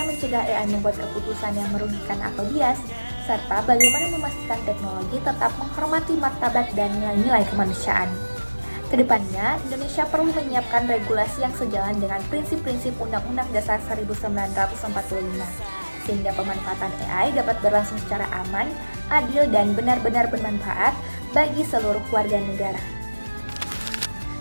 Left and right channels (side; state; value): both; inverted; correlation -1.00